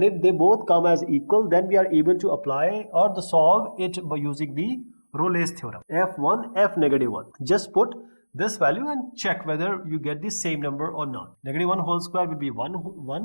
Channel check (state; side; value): inverted; both; correlation -1.00